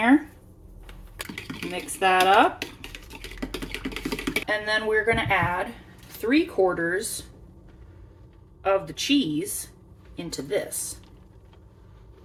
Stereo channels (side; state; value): both; identical; correlation 1.00